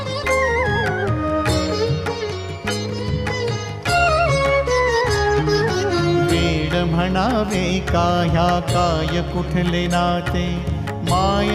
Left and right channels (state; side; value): identical; both; correlation 1.00